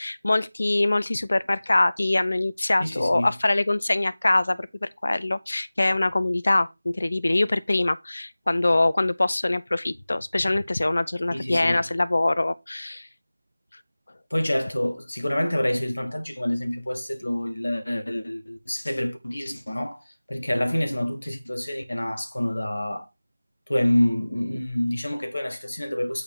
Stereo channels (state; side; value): inverted; both; correlation -0.99